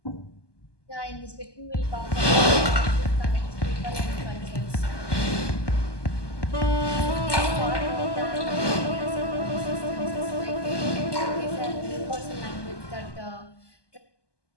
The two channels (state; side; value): late; right; 1.2 ms